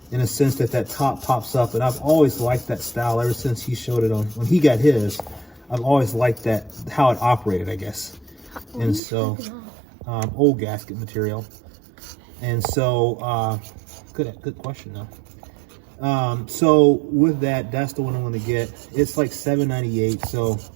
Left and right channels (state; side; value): drops out; left; at 9.0 s